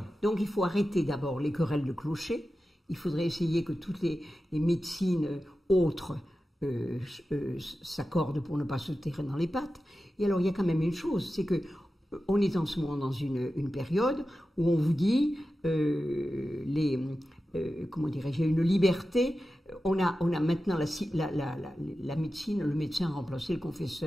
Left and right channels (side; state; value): both; normal; correlation 0.93